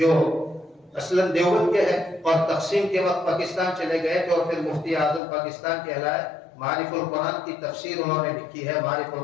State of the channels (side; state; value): right; drops out; at 5.2 s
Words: اصلاً دیوبند کے ہیں اور تقسیم کے وقت پاکستان چلے گئے تھے، اور پھر مفتی اعظم پاکستان کہلائے۔ معارف القرآن کی تفسیر انہوں نے لکھی ہے، معارف